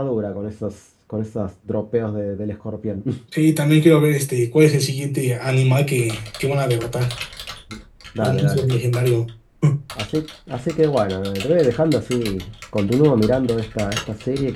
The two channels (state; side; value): identical; both; correlation 1.00